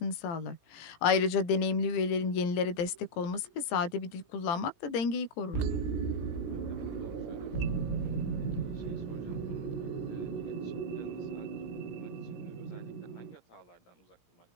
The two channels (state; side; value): late; right; 17 ms